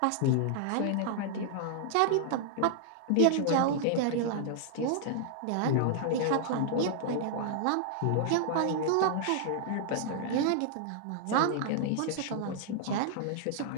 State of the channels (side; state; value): both; different; correlation -0.01